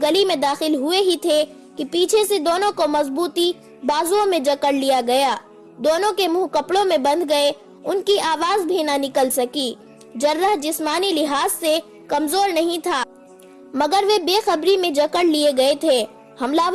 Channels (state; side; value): identical; both; correlation 1.00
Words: گلی میں داخل ہوئے ہی تھے کہ پیچھے سے دونوں کو مضبوطی بازوؤں میں جکڑ لیا گیا۔ دونوں کے منہ کپڑوں میں بند گئے۔ ان کی آواز بھی نہ نکل سکی۔ جراح جسمانی لحاظ سے کمزور نہیں تھا، مگر وہ بے خبری میں جکڑ لیے گئے تھے۔ حملہ